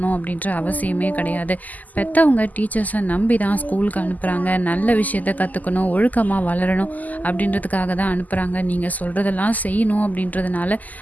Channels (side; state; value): right; late; 0.080 ms